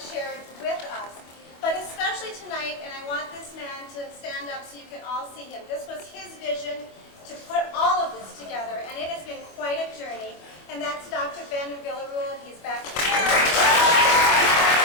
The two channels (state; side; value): late; right; 25 ms